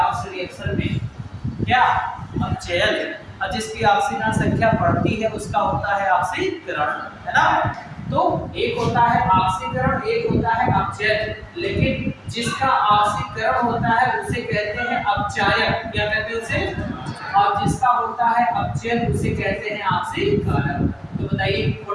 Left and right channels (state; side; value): identical; both; correlation 1.00